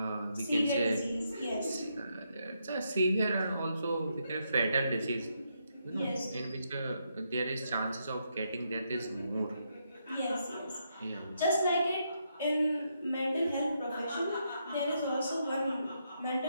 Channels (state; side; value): inverted; both; correlation -0.79